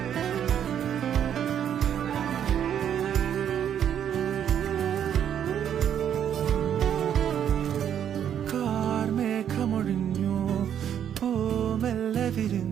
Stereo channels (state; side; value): quieter; left; 9.3 dB